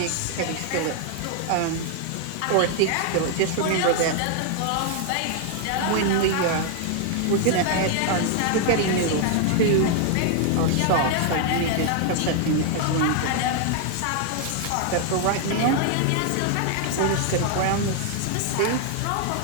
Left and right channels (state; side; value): different; both; correlation 0.00